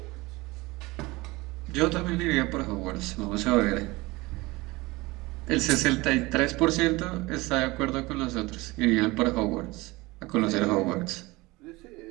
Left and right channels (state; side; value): quieter; left; 22.1 dB